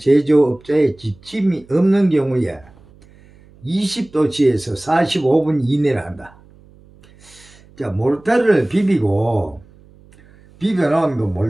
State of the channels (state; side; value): noise; right; hum, 27 dB below the sound